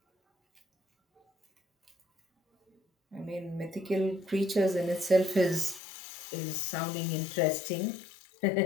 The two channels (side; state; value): right; drops out; at 5.8 s